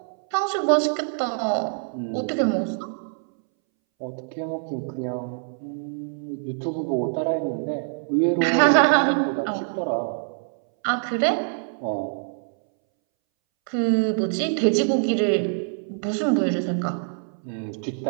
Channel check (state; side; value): silent; left; 62 dB below the other